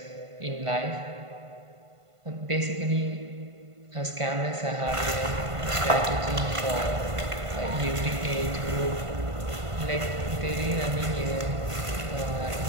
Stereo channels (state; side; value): late; left; 1.5 ms